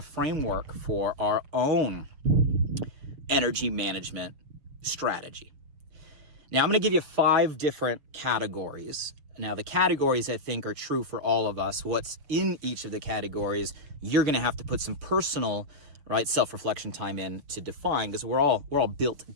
framework for our own energy management strategy. Now I'm going to give you 5 different categories. Now, the categories, I think, are true for all of us. What's in each of the categories, you're going to have to put some personal, right, self-reflection time in to define, because we're all built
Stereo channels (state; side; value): late; left; 6.5 ms